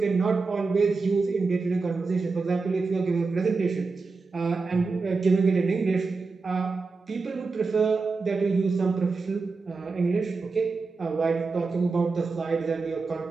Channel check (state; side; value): quieter; left; 4.2 dB